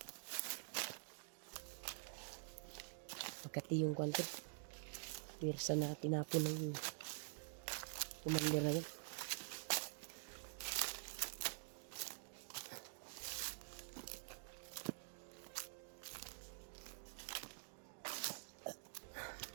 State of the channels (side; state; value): left; silent; digital silence